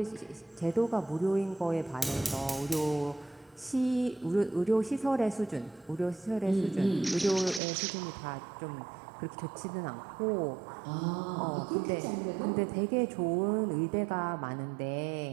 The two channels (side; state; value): left; drops out; at 7.6 s